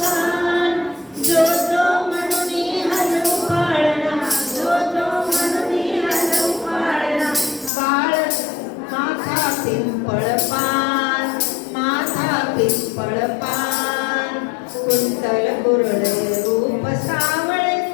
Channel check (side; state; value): right; drops out; at 7.7 s